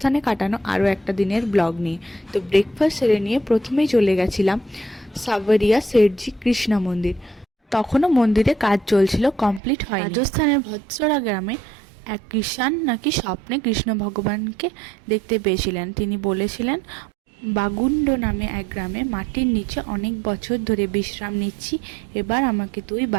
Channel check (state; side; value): drops out; left; at 9.6 s